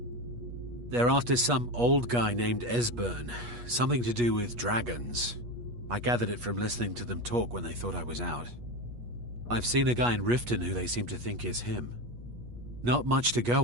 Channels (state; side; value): late; left; 8.3 ms